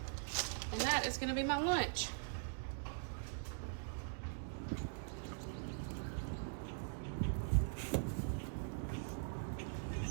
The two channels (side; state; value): left; silent; digital silence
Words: And that is gonna be my lunch.